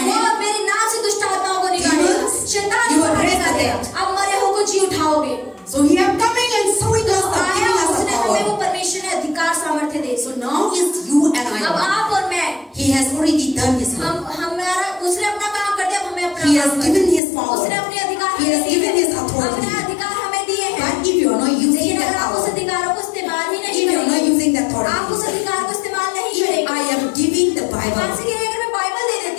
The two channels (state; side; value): drops out; right; at 17.2 s